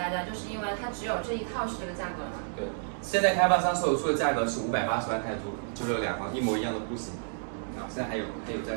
家，就是因为它只有这一套是这个价格嘛。对。现在开发商售出的价格是580万泰铢，就是两房一模一样的户型。啊，现在还有在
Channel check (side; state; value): left; silent; digital silence